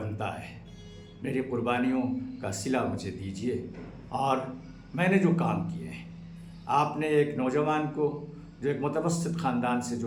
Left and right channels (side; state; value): both; identical; correlation 1.00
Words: ہے، میری قربانیوں کا صلہ مجھے دیجیے، اور میں نے جو کام کیے ہیں، آپ نے ایک نوجوان کو، جو ایک متوسط خاندان سے